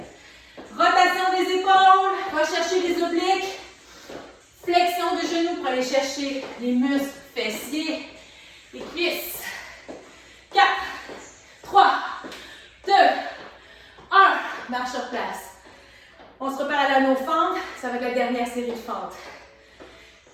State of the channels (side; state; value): both; identical; correlation 1.00